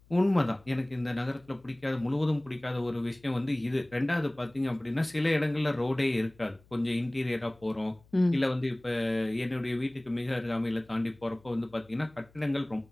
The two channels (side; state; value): left; noise; hum, 28 dB below the sound